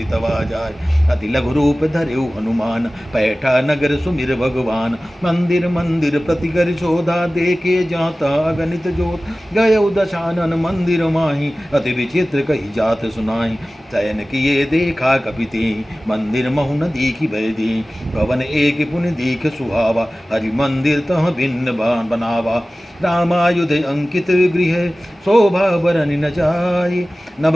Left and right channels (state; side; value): normal; both; correlation 0.97